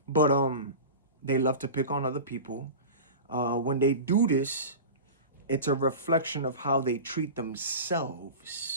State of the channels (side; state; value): both; inverted; correlation -0.31